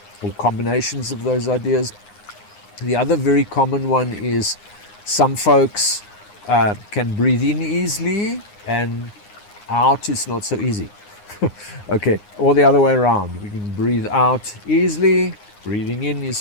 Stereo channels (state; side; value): late; right; 9.7 ms